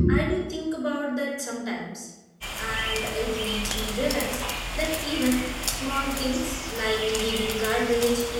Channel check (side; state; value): both; identical; correlation 1.00